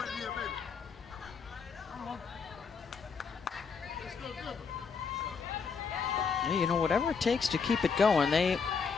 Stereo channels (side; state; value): right; quieter; 5.6 dB